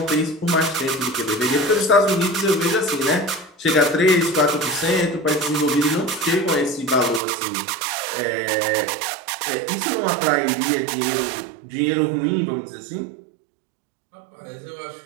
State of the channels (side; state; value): left; drops out; at 7.2 s